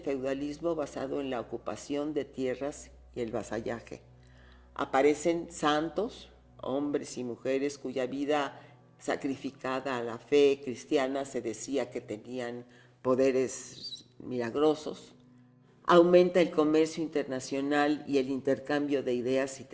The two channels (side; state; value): both; identical; correlation 1.00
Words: basado en la ocupación de tierras y el vasallaje. Aparecen santos, hombres y mujeres cuya vida sacrificada a la fe cristiana se decía que tenían poderes milagrosos. Aumenta el comercio internacional y el intercambio de ideas y